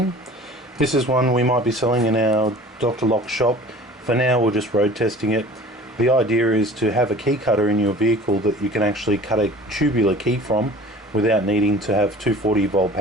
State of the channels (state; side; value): normal; both; correlation 0.44